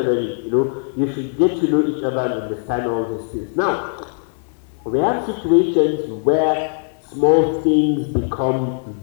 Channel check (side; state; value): right; silent; digital silence